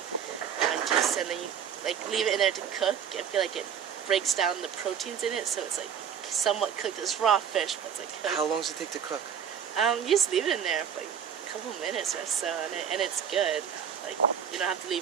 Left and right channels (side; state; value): left; quieter; 8.1 dB